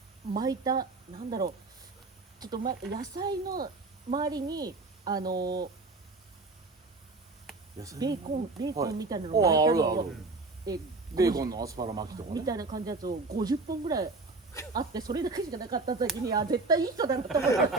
う巻いたなんだろうちょっと野菜の周りにベーコンみたいなのはい巻いたのをあるあるえベーコンのアスパラ巻きとかね。みたいな感じのやつを50本ぐらいあってそれだけしかなかった時に絶対いい人だなと思いまし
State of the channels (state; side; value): quieter; left; 3.5 dB